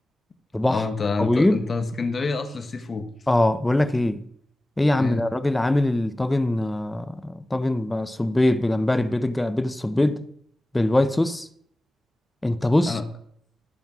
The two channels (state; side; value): normal; both; correlation 0.97